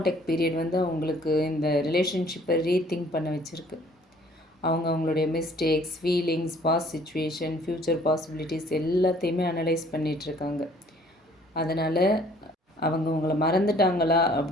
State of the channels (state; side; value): normal; both; correlation 0.57